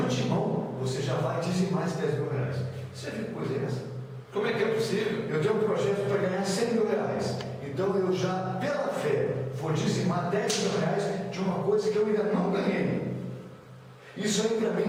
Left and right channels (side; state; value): both; identical; correlation 1.00